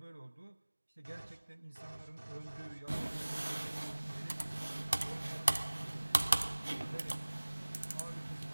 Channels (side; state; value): both; inverted; correlation -1.00